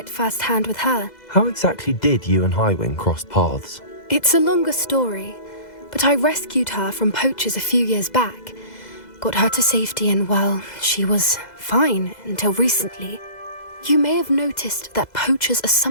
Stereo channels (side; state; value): right; late; 2.0 ms